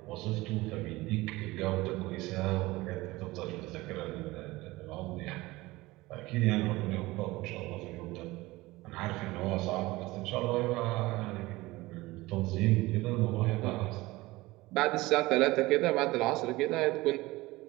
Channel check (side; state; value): left; quieter; 20.1 dB